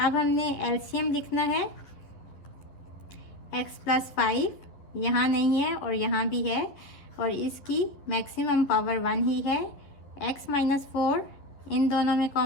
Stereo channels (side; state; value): right; late; 11 ms